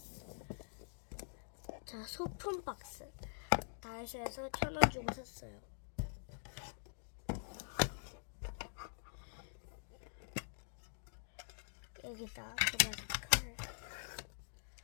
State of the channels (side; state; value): right; silent; digital silence